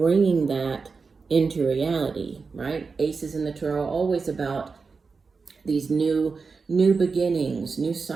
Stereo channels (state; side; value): quieter; left; 4.7 dB